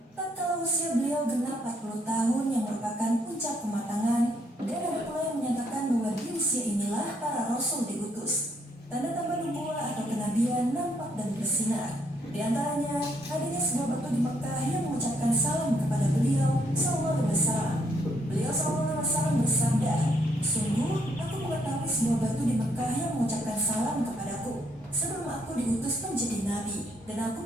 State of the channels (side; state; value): both; normal; correlation 0.71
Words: tatkala usia beliau genap 40 tahun yang merupakan puncak kematangan, dan ada pula yang menyatakan bahwa di usia inilah para rasul diutus. Tanda-tanda nubuwah atau kenabian nampak dan bersinar. Di antaranya, adanya sebuah batu di Mekah yang mengucapkan salam kepada beliau SAW. Beliau SAW bersabda, "Sungguh, aku mengetahui sebuah batu di Mekah yang mengucapkan salam kepadaku sebelum aku diutus menjadi nabi, dan aku